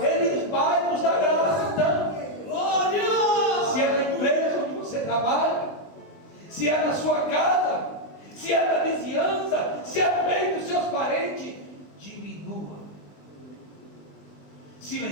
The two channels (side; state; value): right; late; 20 ms